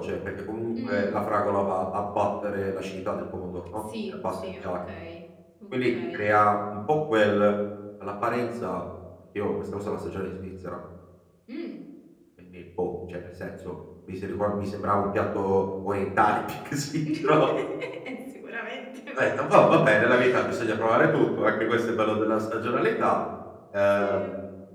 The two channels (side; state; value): both; identical; correlation 1.00